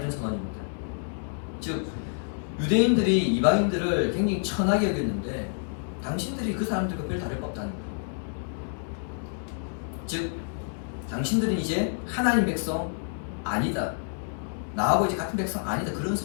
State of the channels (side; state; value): right; silent; digital silence